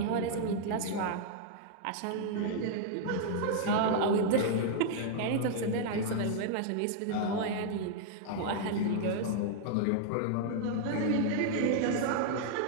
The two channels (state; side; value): different; both; correlation -0.01